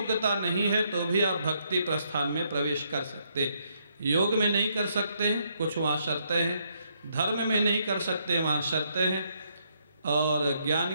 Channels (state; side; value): inverted; both; correlation -0.74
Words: नहीं है तो भी आप भक्ति प्रस्थान में प्रवेश कर सकते। योग में नहीं कर सकते हैं, कुछ वहाँ शर्तें हैं। धर्म में नहीं कर सकते, वहाँ शर्तें हैं। और ज्ञान